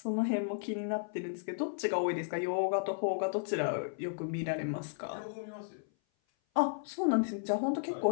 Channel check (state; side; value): silent; right; 55 dB below the other